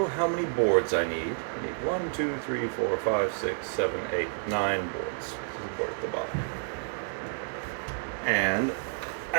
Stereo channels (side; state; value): left; silent; digital silence